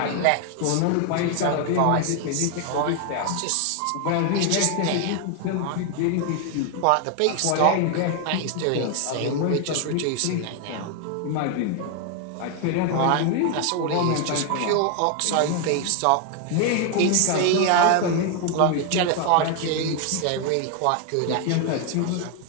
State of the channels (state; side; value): different; both; correlation 0.01